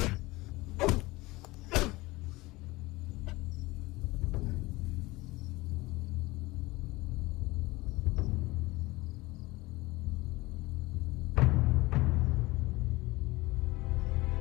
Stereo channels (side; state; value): right; quieter; 21.1 dB